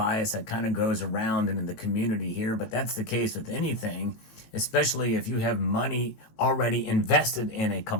that kind of goes around in the community here, but that's the case with anything, especially if you have money already invested in a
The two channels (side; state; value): right; late; 18 ms